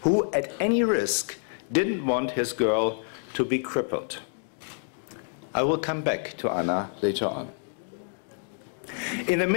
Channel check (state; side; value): silent; right; 60 dB below the other